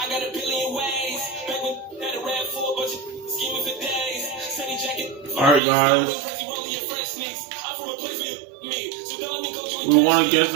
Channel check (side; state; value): left; drops out; at 5.6 s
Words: got a billion ways. Back when had a rap for a bunch of scheming for days. Sunny jacket. Alright, guys. We won against